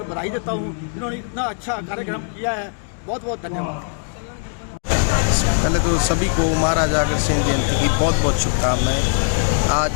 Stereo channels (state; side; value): silent; right; digital silence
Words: बधाई देता हूँ। इन्होंने इतना अच्छा कार्यक्रम किया है, बहुत बहुत धन्यवाद। पहले तो सभी को महाराजा अग्रसेन जयंती की बहुत बहुत शुभकामनाएं। आज